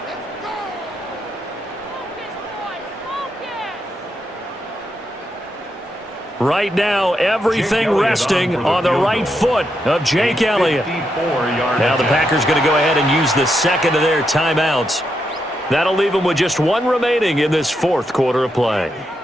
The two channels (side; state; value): both; normal; correlation 0.82